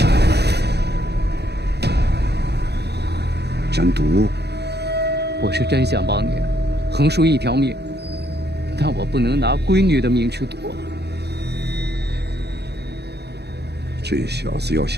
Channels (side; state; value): left; late; 0.48 ms